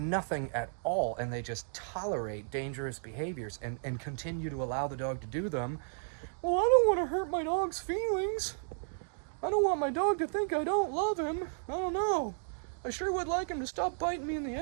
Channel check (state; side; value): silent; left; digital silence